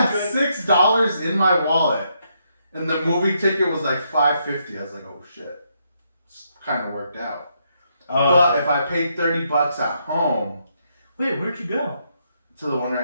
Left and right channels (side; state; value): both; inverted; correlation -0.77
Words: $6 in my wallet, and the movie ticket was like $5.50. I was like, oh shit, kind of worked out. But if I paid $30 at home, wait, where'd you go? To the one